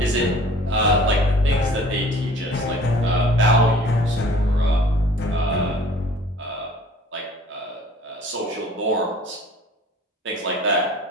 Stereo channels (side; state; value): both; normal; correlation 0.50